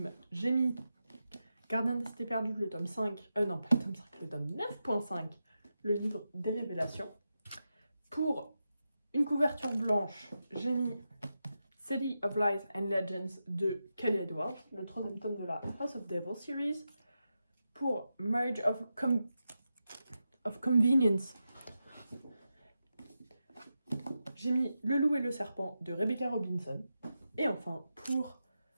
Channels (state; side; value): inverted; both; correlation -0.89